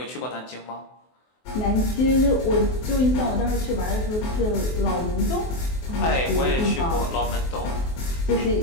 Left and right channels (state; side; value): late; right; 23 ms